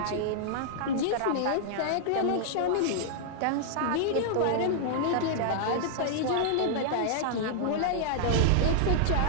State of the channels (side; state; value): both; different; correlation -0.01